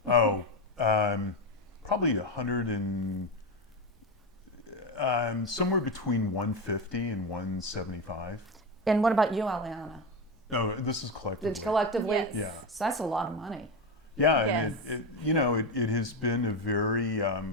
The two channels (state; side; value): normal; both; correlation 0.14